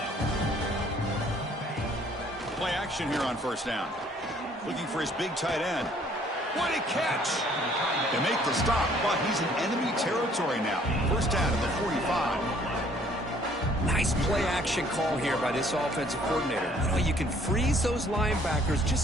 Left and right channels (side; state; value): both; normal; correlation 0.60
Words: Play action here on 1st down. Looking for his big tight end. What a catch! They make the stop, but he's in enemy territory now. 1st down at the 45. Nice play action call here by this offensive coordinator. You know, you can freeze those linebackers